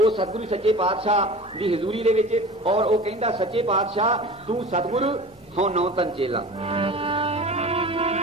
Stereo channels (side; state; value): both; normal; correlation 0.37